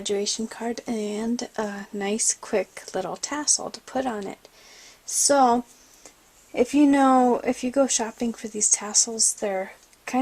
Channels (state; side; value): identical; both; correlation 1.00